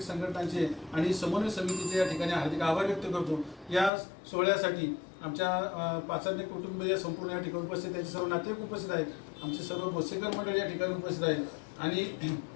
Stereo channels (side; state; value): right; drops out; at 3.9 s